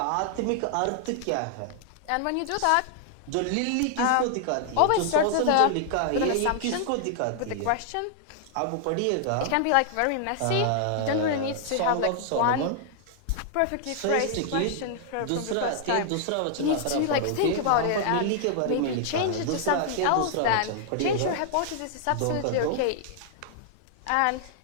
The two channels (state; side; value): different; both; correlation 0.00